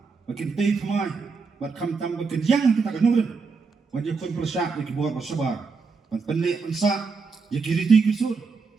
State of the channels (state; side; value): quieter; left; 4.8 dB